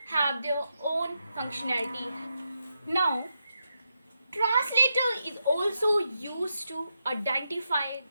have their own functionality. Now translator is also used to identify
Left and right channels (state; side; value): inverted; both; correlation -0.85